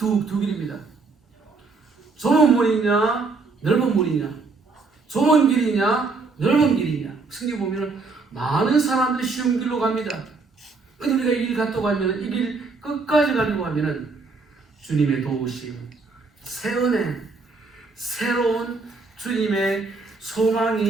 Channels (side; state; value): left; quieter; 4.1 dB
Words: 길입니다. 좁은 문이냐 넓은 문이냐, 좁은 길이냐 넓은 길이냐. 성경 보면 많은 사람들이 쉬운 길로 갑니다. 근데 우리가 이 길 갔다고 하면 이 길 끝까지 가려고 하면은 주님의 도우심, 새 은혜, 새로운 주님의